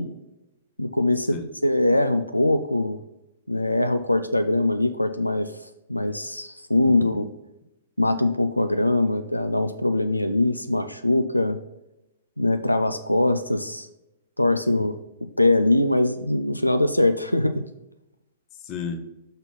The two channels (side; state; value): both; inverted; correlation -0.91